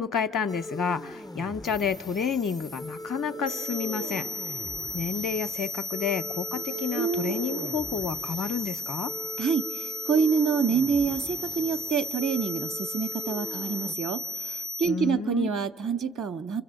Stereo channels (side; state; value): both; normal; correlation 0.57